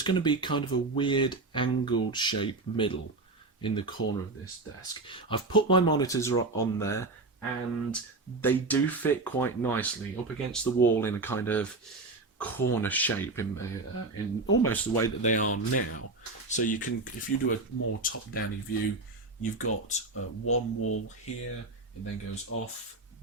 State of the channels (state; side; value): quieter; left; 3.3 dB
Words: going to be kind of a weird angled shape middle in the corner of this desk. I've put my monitors on there, and they do fit quite nicely up against the wall in a kind of corner shape in almost the way that they are now. So you can, if you do a more top-down view, you've got one wall here, it then goes off